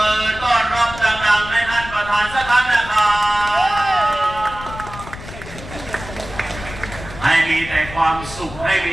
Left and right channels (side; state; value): left; noise; rumble, 13 dB below the sound